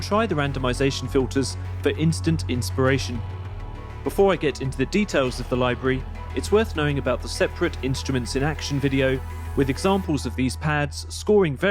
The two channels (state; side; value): identical; both; correlation 1.00